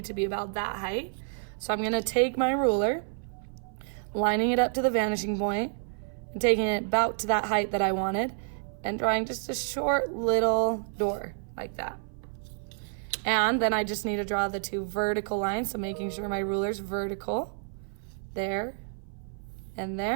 to be about that height. So I'm going to take my ruler, lining it up to the vanishing point, and taking it about to that height that I wanted, and drawing just a short little door like that. And then I just need to draw the 2 vertical lines, so making sure my ruler's vertical, there and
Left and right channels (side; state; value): left; silent; 56 dB below the other